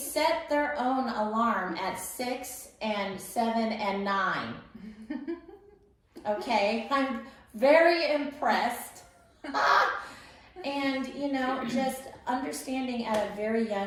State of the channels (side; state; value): both; identical; correlation 1.00